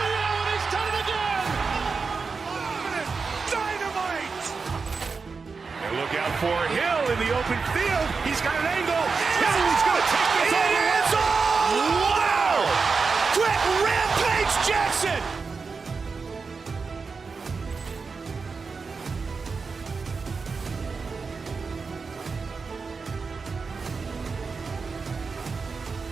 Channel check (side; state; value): left; quieter; 4.8 dB